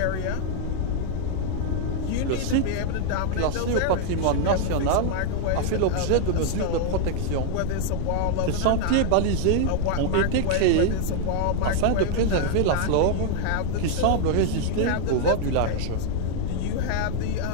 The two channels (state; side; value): different; both; correlation 0.00